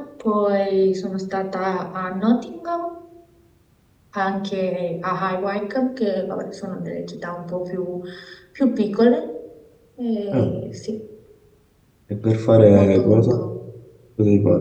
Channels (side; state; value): both; identical; correlation 1.00